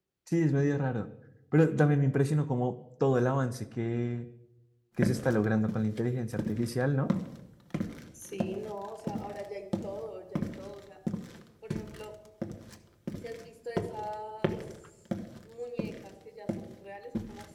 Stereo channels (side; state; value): both; identical; correlation 1.00